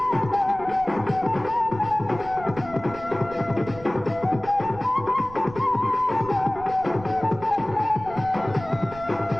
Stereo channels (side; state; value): right; noise; rumble, 16 dB below the sound